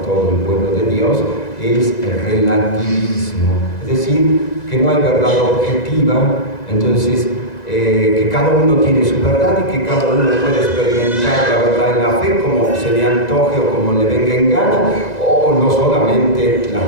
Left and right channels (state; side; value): late; right; 2.0 ms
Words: todo el pueblo de Dios, es el relativismo. Es decir, que no hay verdad objetiva, entonces que cada uno tiene su verdad y que cada uno puede experimentar la verdad en la fe como se le antoje o como le venga en gana, o no solamente la